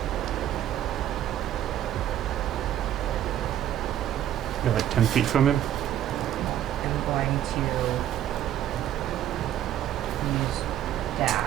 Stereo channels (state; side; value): quieter; left; 11.5 dB